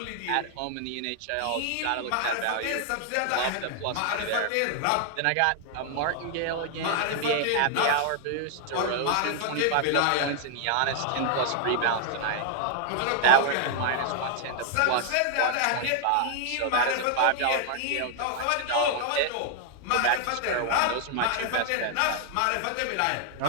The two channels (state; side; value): different; both; correlation 0.00